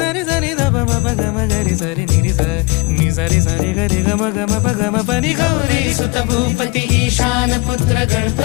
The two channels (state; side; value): quieter; right; 26.8 dB